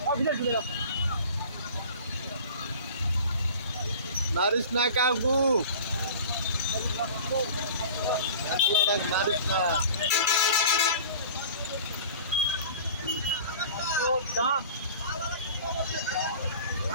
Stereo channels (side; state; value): both; inverted; correlation -0.41